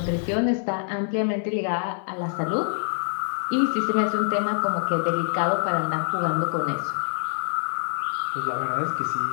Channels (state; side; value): silent; right; digital silence